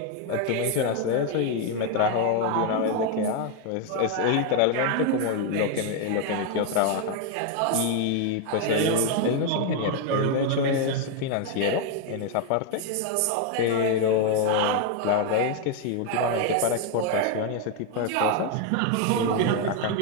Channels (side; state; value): both; different; correlation 0.01